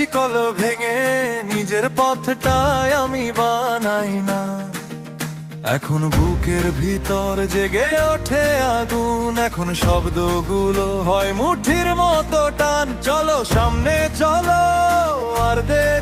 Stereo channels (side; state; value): both; identical; correlation 1.00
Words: ভেঙে নিজের পথটাই আমি বানাই না। এখন বুকের ভিতর জেগে ওঠে আগুন, এখন শব্দগুলো হয় মুঠির মতো টান। চলো সামনে চলো, আর